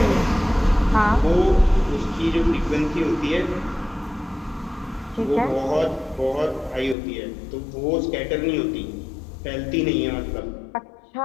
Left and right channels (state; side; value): drops out; right; at 7.0 s